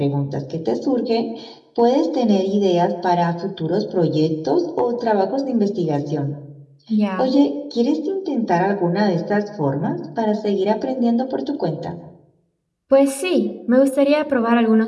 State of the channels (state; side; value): identical; both; correlation 1.00